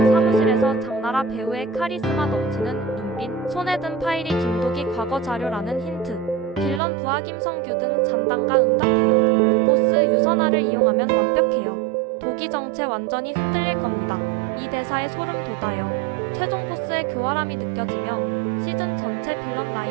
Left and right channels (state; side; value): drops out; left; at 6.8 s